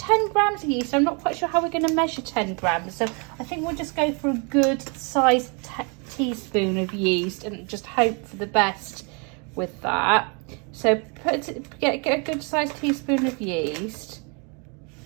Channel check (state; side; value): quieter; left; 34.1 dB